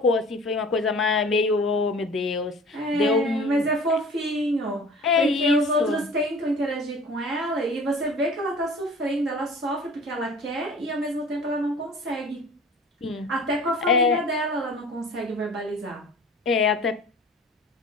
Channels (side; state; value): both; normal; correlation 0.44